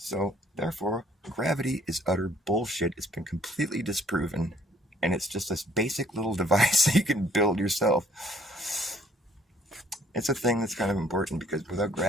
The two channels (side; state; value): both; normal; correlation 0.61